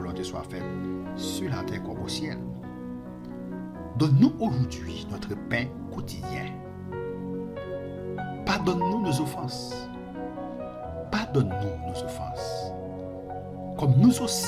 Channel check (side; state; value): both; identical; correlation 1.00